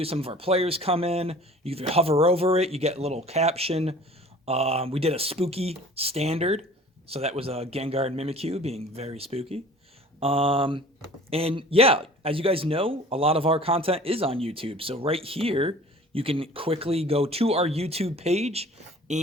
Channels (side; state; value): both; normal; correlation 0.46